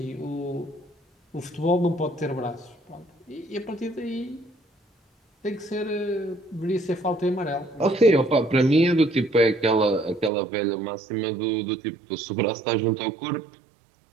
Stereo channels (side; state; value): left; drops out; at 10.3 s